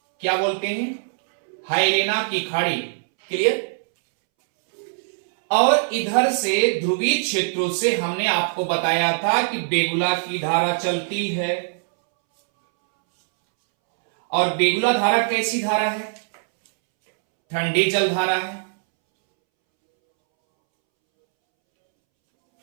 क्या बोलते हैं? हेलेना की खाड़ी। क्लियर? और इधर से ध्रुवीय क्षेत्रों से हमने आपको बताया था कि बेगुला की धारा चलती है। और बेगुला धारा कैसी धारा है? ठंडी जल धारा है।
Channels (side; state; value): left; silent; 64 dB below the other